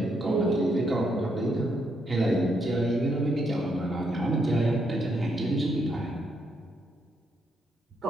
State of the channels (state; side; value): normal; both; correlation 0.77